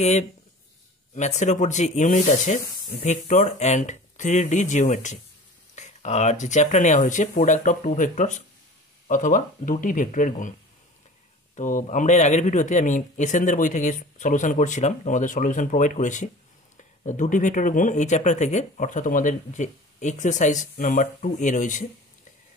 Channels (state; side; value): normal; both; correlation 0.41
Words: ম্যাথসের ওপর যে ইউনিট আছে ভেক্টর অ্যান্ড 3D জিওমেট্রি, আর যে চ্যাপ্টার নেওয়া হয়েছে প্রোডাক্ট অফ টু ভেক্টরস অথবা দুটি ভেক্টরের গুণ। তো আমরা এর আগের ভিডিওতে আমি এসএনদের বই থেকে সলিউশন করছিলাম, তোমাদের সলিউশন প্রোভাইড করেছি দুটি ভেক্টরের গুণ এই চ্যাপ্টার থেকে, অর্থাৎ তোমাদের যে এক্সারসাইজ নাম্বার 2 রয়েছে।